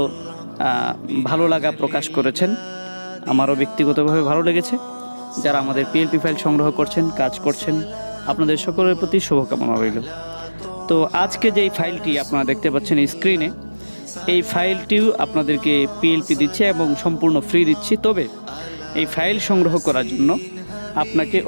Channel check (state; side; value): inverted; both; correlation -1.00